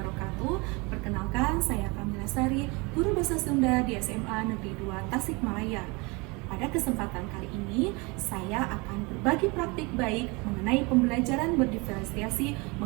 Perkenalkan, saya Kamila Sari, guru bahasa Sunda di SMA Negeri 2 Tasikmalaya. Pada kesempatan kali ini, saya akan berbagi praktik baik mengenai pembelajaran berdiferensiasi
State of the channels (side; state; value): left; quieter; 27.2 dB